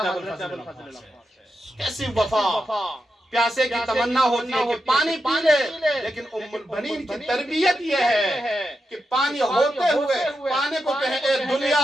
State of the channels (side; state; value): both; normal; correlation 0.87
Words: ابو الفضل۔ کیسی وفا! پیاسے کی تمنا ہوتی ہے کہ پانی پی لے، لیکن ام البنین کی تربیت یہ ہے کہ پانی ہوتے ہوئے پانی کو کہے اے